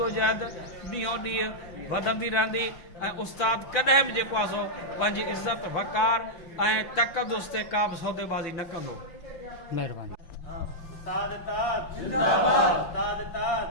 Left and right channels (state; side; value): late; right; 6.0 ms